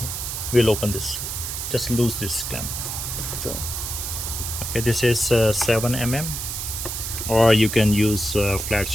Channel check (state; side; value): noise; right; hiss, 5 dB below the sound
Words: we'll open this. Just lose this clamp. So, okay, this is 7 mm, or you can use a flat